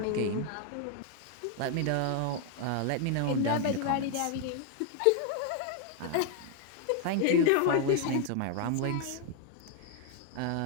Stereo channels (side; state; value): both; different; correlation 0.00